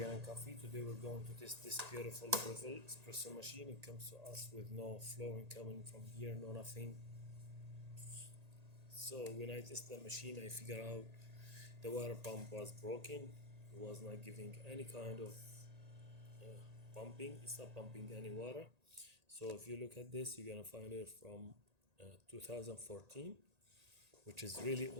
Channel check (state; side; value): late; left; 1.8 ms